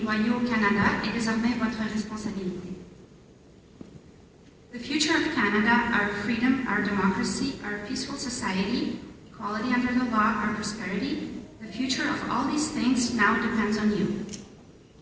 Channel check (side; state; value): both; identical; correlation 1.00